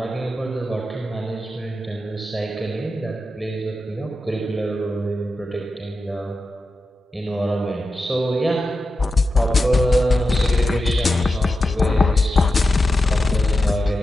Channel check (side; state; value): both; normal; correlation 0.90